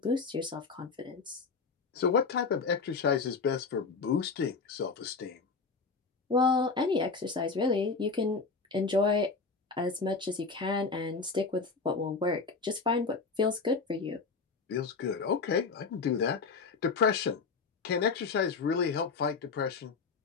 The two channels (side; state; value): right; quieter; 4.7 dB